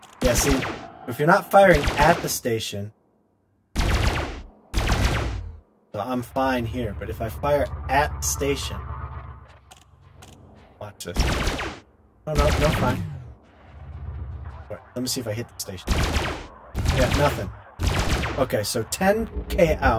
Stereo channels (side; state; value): both; identical; correlation 1.00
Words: Yeah, see, if you're not firing at the station, so I'm fine here. But if I fire at the station, watch this. Oh no, no, fine. Right, let me see if I hit the station. Yeah, nothing. Okay, so 10K